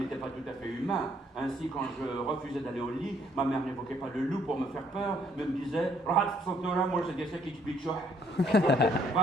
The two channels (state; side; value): normal; both; correlation 0.66